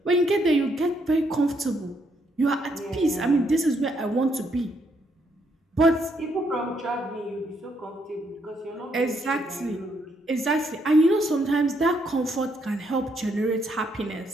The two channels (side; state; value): both; normal; correlation 0.74